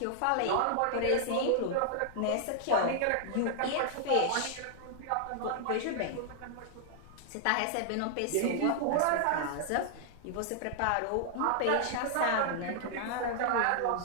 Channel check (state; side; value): different; both; correlation -0.01